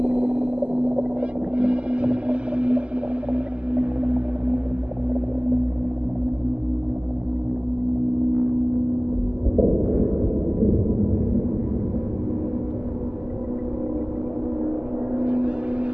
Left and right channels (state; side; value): late; left; 0.052 ms